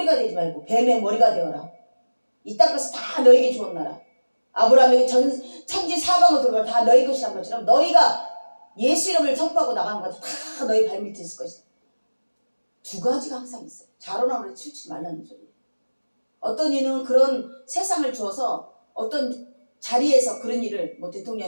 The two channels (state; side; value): inverted; both; correlation -1.00